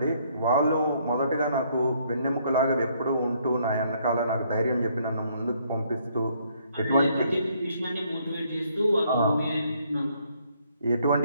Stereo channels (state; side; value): inverted; both; correlation -0.68